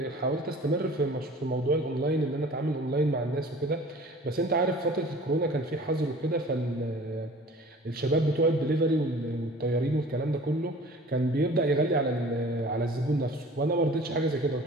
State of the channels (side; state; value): both; normal; correlation 0.46